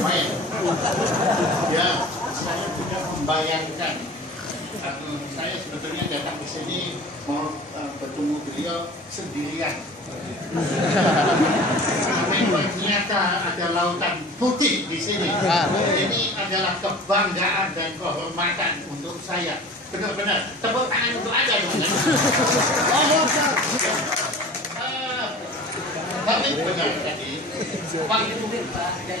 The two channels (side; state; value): both; normal; correlation 0.40